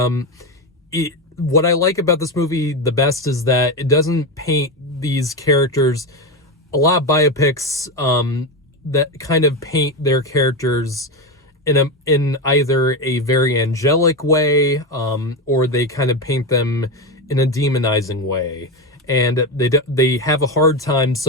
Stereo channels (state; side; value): normal; both; correlation 0.15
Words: what I like about this movie the best is that it doesn't paint these characters. A lot of biopics that kind of paint their characters in either a very angelic way, or they kind of paint them in a demonizing way. And they have a hard time